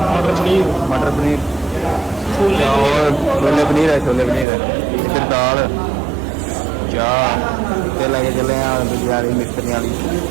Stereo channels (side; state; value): left; drops out; at 4.5 s